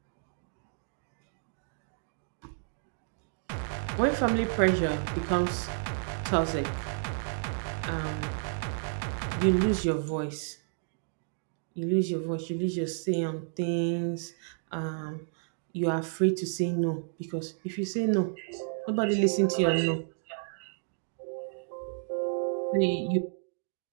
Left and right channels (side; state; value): left; silent; digital silence